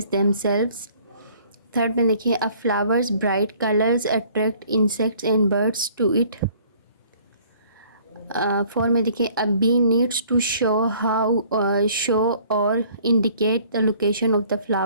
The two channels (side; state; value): both; inverted; correlation -0.57